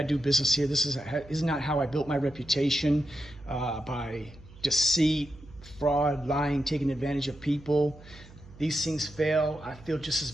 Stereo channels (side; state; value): right; noise; hum, 21 dB below the sound